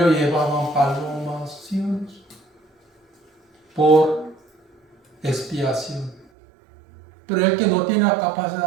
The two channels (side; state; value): left; drops out; at 6.2 s